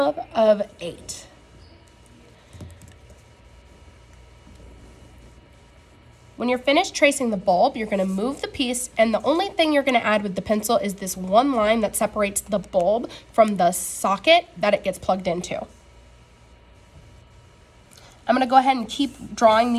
of 8. When you're finished tracing the bulb, you're going to move the piece, and the only thing you're going to add with the pencil is this one line that separates the bulb from the socket that it gets plugged into. I'm going to go ahead and keep drawing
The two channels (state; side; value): identical; both; correlation 1.00